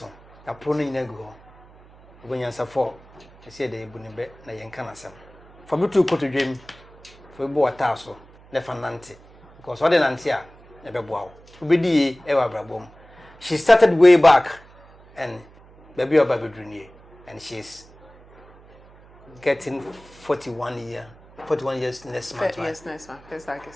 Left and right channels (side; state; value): right; noise; hum, 25 dB below the sound